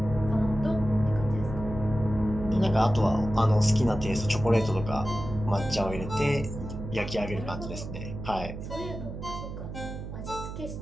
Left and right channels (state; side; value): noise; right; hum, 8 dB below the sound